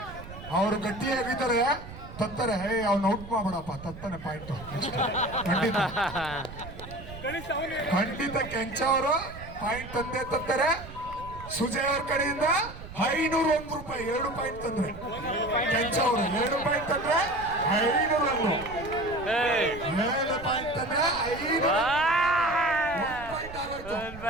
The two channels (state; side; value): noise; right; rumble, 14 dB below the sound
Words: ಅವ್ರು ಗಟ್ಟಿಯಾಗಿದ್ದಾರೆ, ತತ್ತಾರೆ. ಅವ್ನ ಔಟ್ ಮಾಡ್ಬಿಡಪ್ಪ, ತತ್ತಾನೆ ಪಾಯಿಂಟ್. ಖಂಡಿತ ಕೆಂಚ ಅವರು ಪಾಯಿಂಟ್ ತಂದೆ ತತ್ತಾರೆ. ಸುಜಯ್ ಅವ್ರ ಕಡೆಯಿಂದ 501 ರೂಪಾಯಿ 2 ಪಾಯಿಂಟ್ ತಂದ್ರೆ. ಕೆಂಚ ಅವರು 2 ಪಾಯಿಂಟ್ ತಂದ್ರೆ 501. 7 ಪಾಯಿಂಟ್ ತಂದ್ರೆ 5 ಪಾಯಿಂಟ್ ಆಗೋಯ್ತು.